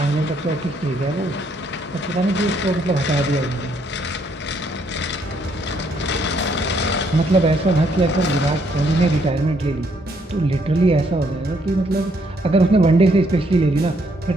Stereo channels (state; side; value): normal; both; correlation 0.70